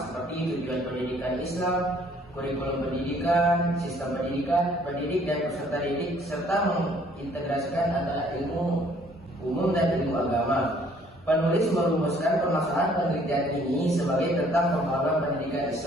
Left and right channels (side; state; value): both; normal; correlation 0.60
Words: seperti tujuan pendidikan Islam, kurikulum pendidikan, sistem pendidikan, pendidik dan peserta didik, serta mengintegrasikan antara ilmu umum dan ilmu agama. Penulis merumuskan permasalahan penelitian ini sebagai tentang pembaharuan pendidikan